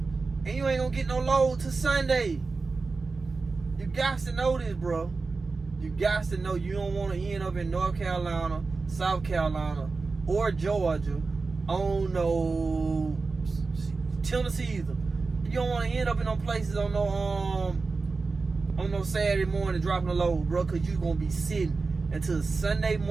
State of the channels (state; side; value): quieter; left; 4.1 dB